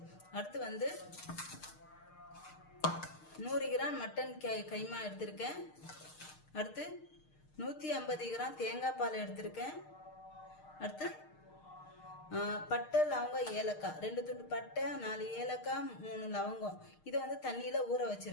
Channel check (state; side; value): late; right; 6.5 ms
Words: அடுத்து வந்து 100 கிராம் மட்டன் கைமா எடுத்திருக்கேன். அடுத்து 150 கிராம் தேங்காய் பால் எடுத்திருக்கேன். அடுத்து பட்டை, லவங்கம், ஏலக்காய், 2 துண்டு பட்டை, 4 ஏலக்காய், 3 லவங்கம். இதை வந்து தண்ணியில் ஊற